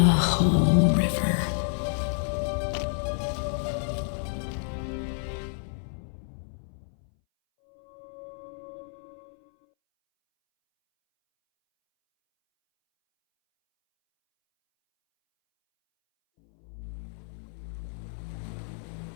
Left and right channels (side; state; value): right; silent; 58 dB below the other